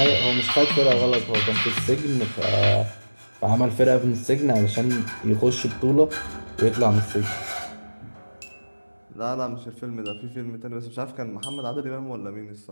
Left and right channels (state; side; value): inverted; both; correlation -1.00